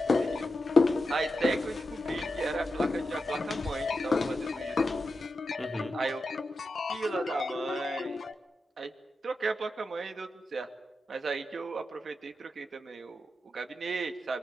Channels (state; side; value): normal; both; correlation 0.89